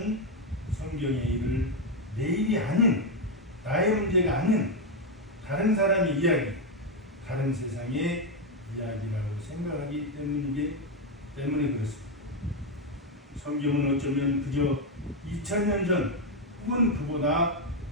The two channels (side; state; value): both; normal; correlation 0.05